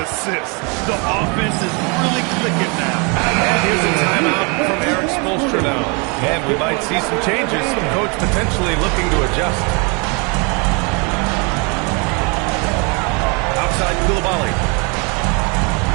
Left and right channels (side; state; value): left; quieter; 32.2 dB